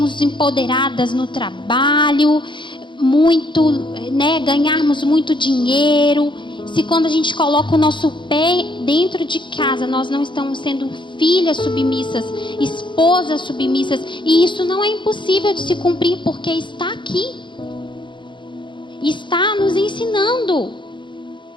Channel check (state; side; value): late; right; 0.23 ms